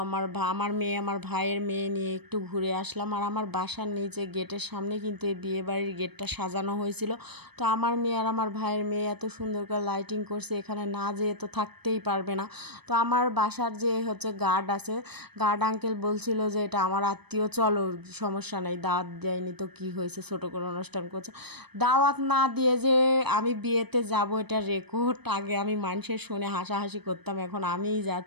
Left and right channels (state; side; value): late; left; 0.98 ms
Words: আমার মেয়ে, আমার ভাইয়ের মেয়ে নিয়ে একটু ঘুরে আসলাম। আর আমার বাসার নিচে গেটের সামনে কিন্তু এই বিয়েবাড়ির গেটটা সাজানো হয়েছিল। তো আমার মেয়ে আর আমার ভাইয়ের মেয়ে এত সুন্দর করে লাইটিং করছে, এখানে না যেয়ে তো থাকতেই পারবে না। তো আমার বাসার যে হচ্ছে গার্ড আছে, গার্ড আঙ্কেল বলছিল যে এটা আমার আত্মীয়, চলো সমস্যা নেই, দাওয়াত দেয়নি তো কী হয়েছে, ছোটো করে অনুষ্ঠান করছে। দাওয়াত না দিয়ে যে আমি বিয়েতে যাব, এটা রেকর্ড। আগে আমি মানুষের শুনে হাসাহাসি করতাম, এখন আমিই